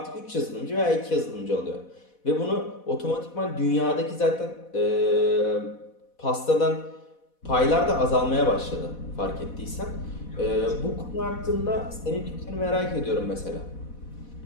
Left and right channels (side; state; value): right; late; 4.1 ms